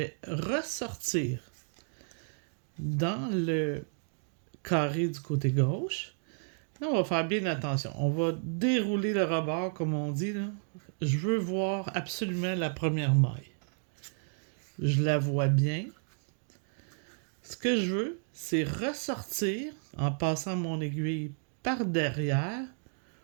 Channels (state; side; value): silent; left; 56 dB below the other